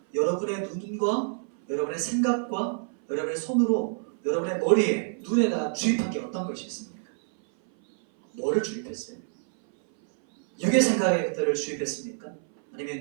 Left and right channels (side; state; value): left; silent; 58 dB below the other